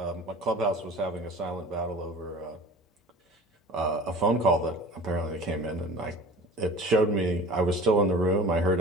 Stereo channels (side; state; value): both; normal; correlation 0.41